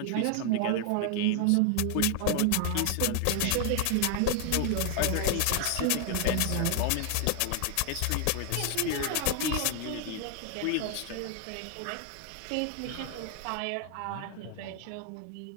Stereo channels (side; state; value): both; different; correlation 0.00